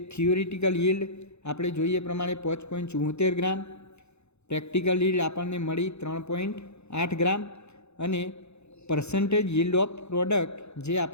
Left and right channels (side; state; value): right; late; 0.81 ms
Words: થિયોરિટિકલ યીલ્ડ આપણે જોઈએ પ્રમાણે 5.74 ગ્રામ, પ્રેક્ટિકલ યીલ્ડ આપણને મળી 3.8 ગ્રામ અને પર્સન્ટેજ યીલ્ડ ઓફ પ્રોડક્ટ જે